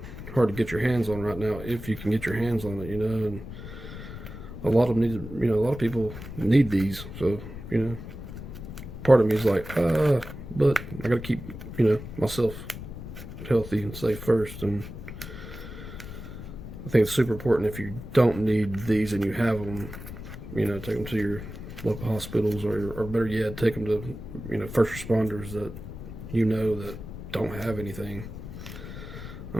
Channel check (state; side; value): noise; left; rumble, 11 dB below the sound